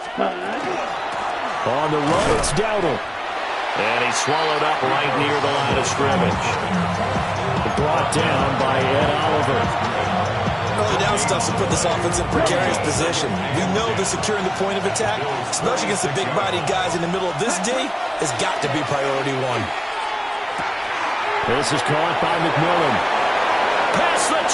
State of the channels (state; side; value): identical; both; correlation 1.00